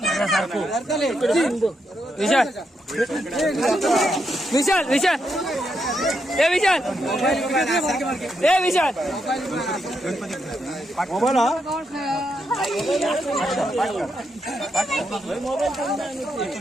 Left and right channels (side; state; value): both; normal; correlation 0.81